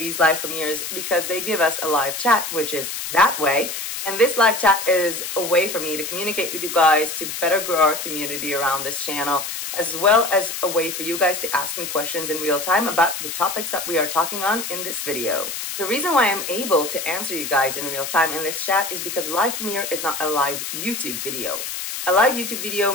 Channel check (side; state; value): left; noise; hiss, 5 dB below the sound